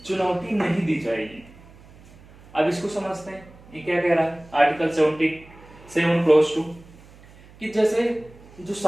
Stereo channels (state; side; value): noise; right; hum, 23 dB below the sound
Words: चुनौती नहीं दी जाएगी। अब इसको समझते हैं, ये क्या कह रहा है आर्टिकल 77 क्लॉज 2 कि जैसे जो